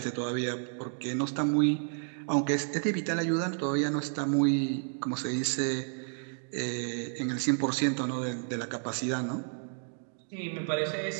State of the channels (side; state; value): left; silent; 56 dB below the other